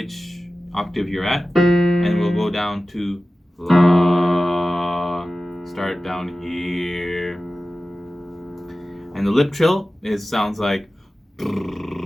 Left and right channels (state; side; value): normal; both; correlation 0.96